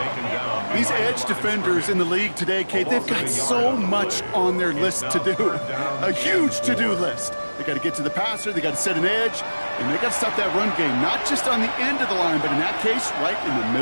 down. These edge defenders in the league today, Kate, they've got so much on their list to do. A huge to-do list. They got to get to the passer, they got to set an edge, and they got to stop that run game, not just on the end of the line, but in that case, right in the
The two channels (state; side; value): inverted; both; correlation -1.00